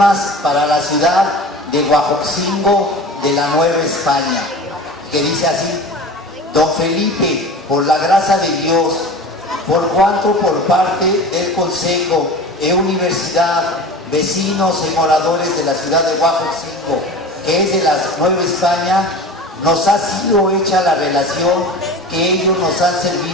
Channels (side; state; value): both; normal; correlation 0.36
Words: para la ciudad de Huejotzingo de la Nueva España, que dice así: Don Felipe, por la gracia de Dios, por cuanto por parte del Consejo e Universidad, vecinos y moradores de la ciudad de Huejotzingo, que es de la Nueva España, nos ha sido hecha la relación que ellos nos han